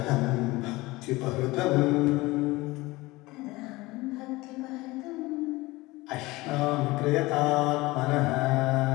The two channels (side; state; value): right; quieter; 20.9 dB